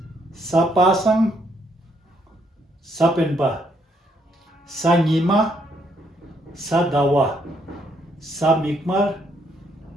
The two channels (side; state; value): both; normal; correlation 0.72